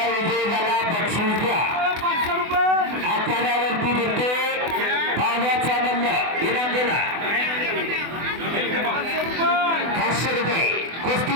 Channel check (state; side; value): late; left; 24 ms